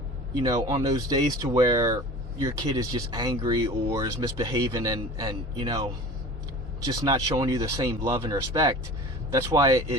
you know, on those days to where your kid is just angry or is misbehaving and you know, just not showing you the same love and respect, that's why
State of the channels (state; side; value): normal; both; correlation 0.38